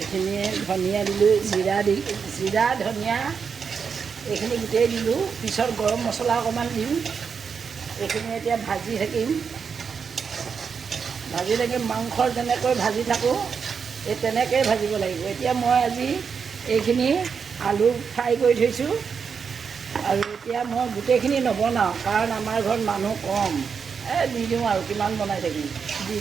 ধনিয়া দিলোঁ, জিৰা ধনিয়া এইখিনি গোটেই দিলোঁ। পিছত গৰম মছলা অকণমান দিম। এইখিনি এতিয়া ভাজি থাকিম। মাংসৰ যেনেকৈ ভাজি থাকোঁ, এই তেনেকৈয়ে ভাজিব লাগিব। এতিয়া মই আজি এইখিনি আলু ফ্ৰাই কৰি থৈছোঁ। আৰু এতিয়া মই গোটেইখিনি নবনাওঁ, কাৰণ আমাৰ ঘৰত মানুহ কম। দি দিওঁ আৰু কিমান বনাই থাকিম, দি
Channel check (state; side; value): quieter; left; 6.1 dB